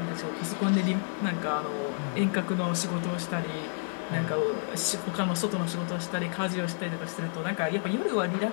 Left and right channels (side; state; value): right; silent; 58 dB below the other